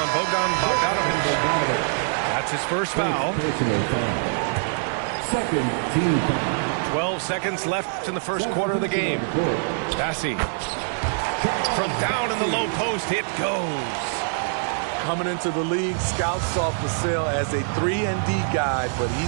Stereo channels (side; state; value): left; silent; digital silence